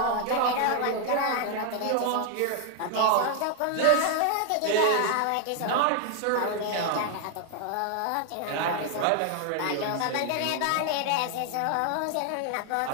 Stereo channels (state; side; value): different; both; correlation 0.00